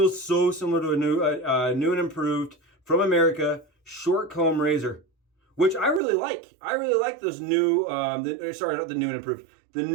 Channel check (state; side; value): drops out; left; at 6.0 s